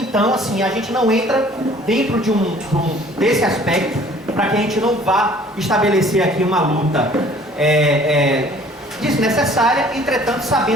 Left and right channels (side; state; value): both; normal; correlation 0.53